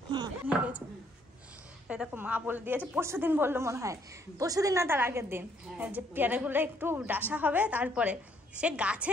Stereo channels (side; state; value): both; normal; correlation 0.67